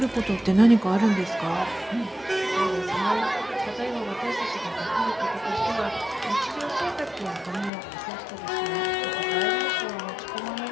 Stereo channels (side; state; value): right; drops out; at 7.7 s